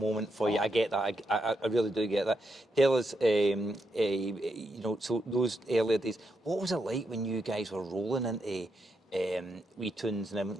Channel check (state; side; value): normal; both; correlation 0.82